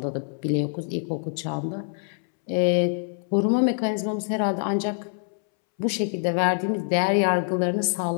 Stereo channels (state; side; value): silent; right; 62 dB below the other